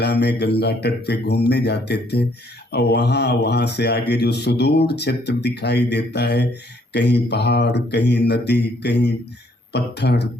में गंगा तट पे घूमने जाते थे। और वहाँ से आगे जो सुदूर क्षेत्र दिखाई देता है, कहीं पहाड़, कहीं नदी, कहीं पत्थर,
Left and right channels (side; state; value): both; normal; correlation 0.66